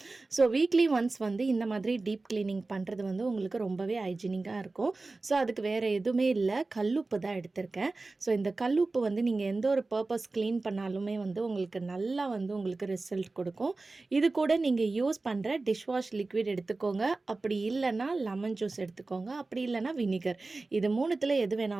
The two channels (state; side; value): quieter; left; 3.4 dB